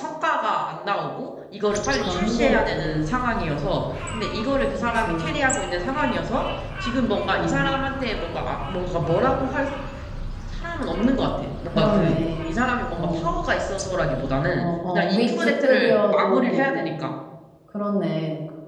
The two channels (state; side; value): identical; both; correlation 1.00